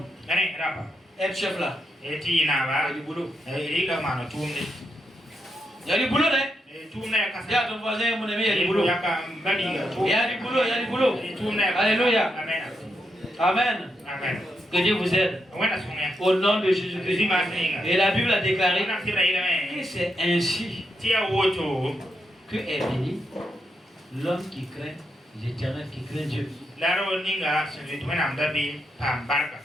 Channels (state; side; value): normal; both; correlation 0.82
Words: être chef là, il y a du boulot. Il y a du boulot, hein? Il y a ton voisin, mon ami, il y a du boulot. Il y a du boulot, il y a du boulot. Alléluia. Amen. Amen. Que Dieu vous aide. Au nom de Jésus-Christ. Et la Bible a déclaré que c'est ainsi que est béni l'homme qui craint l'Éternel, qui craint Dieu.